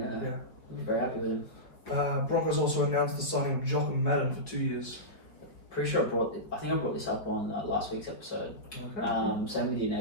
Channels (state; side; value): late; right; 4.7 ms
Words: I'd be very happy with him. Broncos also announced the signing of Jock and Madden for 2 years. Pretty sure I think I brought this up on last week's episode. Okay. Same with your